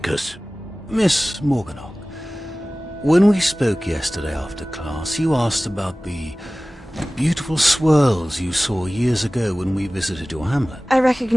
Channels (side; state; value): both; normal; correlation 0.98